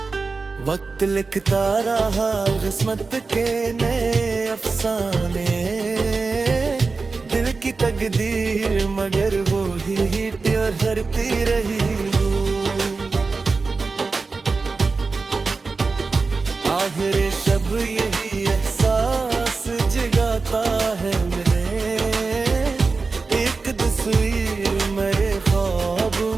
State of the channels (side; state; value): left; quieter; 4.2 dB